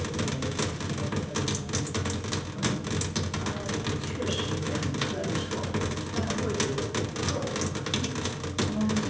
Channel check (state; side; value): identical; both; correlation 1.00